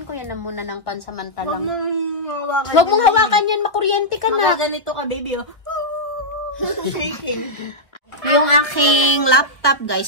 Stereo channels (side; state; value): right; late; 1.2 ms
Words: ko yan na muna ng pansamantalang. Huwag mong hawakan yan, makuryente ka na. Ganito ka, baby, oh. Shaking. Yung aking laptop, guys,